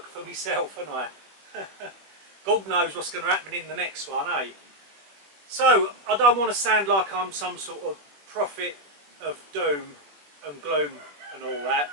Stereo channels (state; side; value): late; left; 21 ms